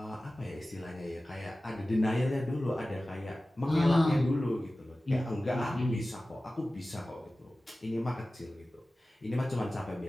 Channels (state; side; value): normal; both; correlation 0.96